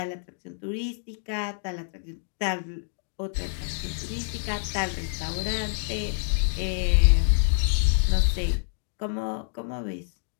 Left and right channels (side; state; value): right; silent; digital silence